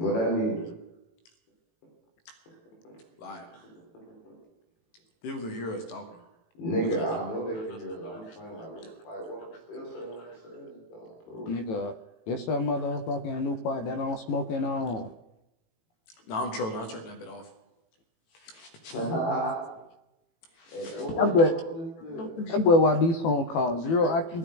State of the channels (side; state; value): right; late; 18 ms